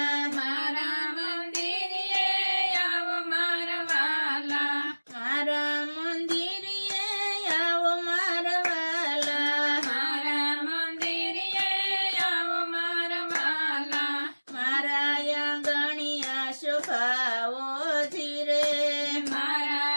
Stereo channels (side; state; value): both; inverted; correlation -1.00